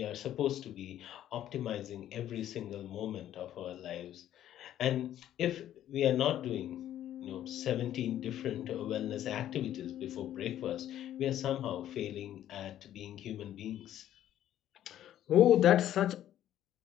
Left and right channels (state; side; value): quieter; right; 11.8 dB